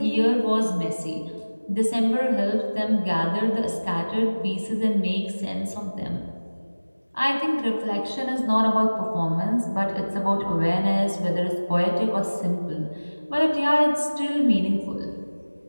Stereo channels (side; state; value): both; inverted; correlation -1.00